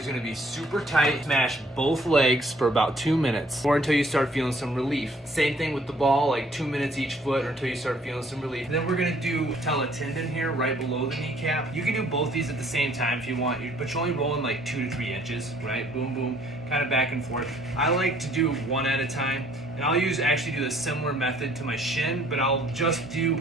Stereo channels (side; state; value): both; normal; correlation 0.61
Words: gonna be super tight. Smash both legs for about 2 minutes, or until you start feeling some relief. Same thing with the ball, like 2 minutes each foot, or until you start feeling some relief. And then we're gonna do patella tendon here, right below the kneecap. You can do both these at the same time if you want, but you're only rolling like 2 to 3 inches, right? Boom, boom, kind of back and forth. I like to do one at a time, and I'll actually do a similar method to my shin, but I'll just do